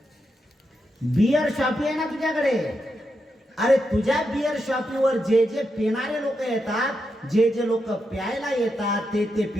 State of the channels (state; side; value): normal; both; correlation 0.85